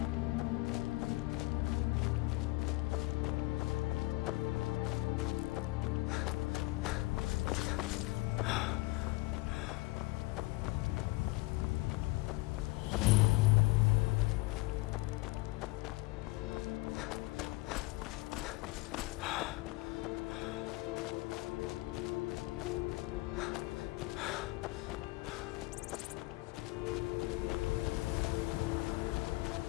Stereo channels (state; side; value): quieter; right; 22.2 dB